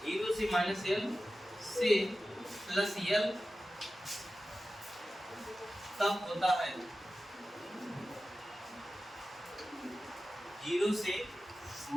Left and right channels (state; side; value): normal; both; correlation 0.94